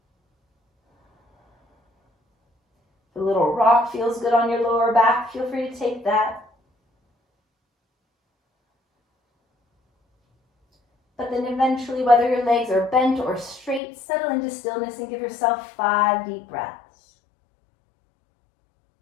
If a little rock feels good on your lower back, feel free to take that. But then eventually, whether your legs are bent or straight, settle into stillness and give yourself 5 deep breaths.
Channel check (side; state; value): right; drops out; at 13.8 s